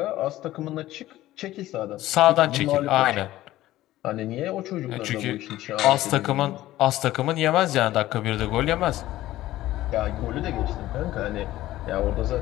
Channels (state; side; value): quieter; right; 15.4 dB